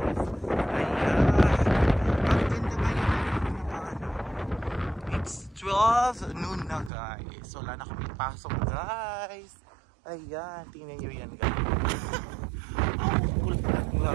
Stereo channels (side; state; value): left; drops out; at 6.9 s